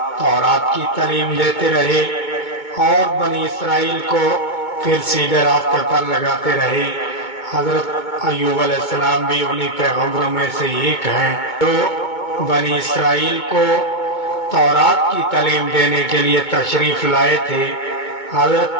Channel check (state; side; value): late; right; 2.2 ms